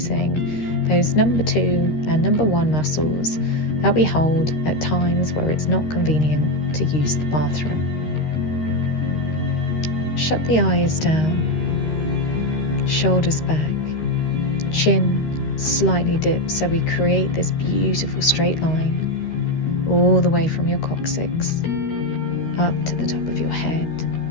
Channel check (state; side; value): late; right; 13 ms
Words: those number 2 and number 1 muscles that we hold at times where it's not convenient to use the bathroom. Shut the eyes down, shoulders back, chin slightly dipped, so we create this beautiful straight line all the way from your coccyx up to the top of your head